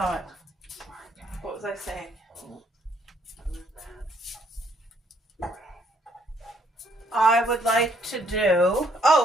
What was I saying? I would like to do,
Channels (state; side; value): normal; both; correlation 0.67